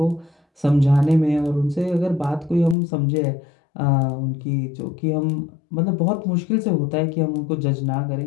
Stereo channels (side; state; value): right; drops out; at 2.8 s